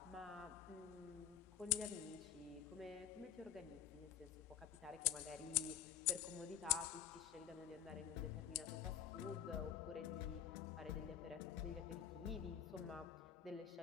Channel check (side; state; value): right; quieter; 9.6 dB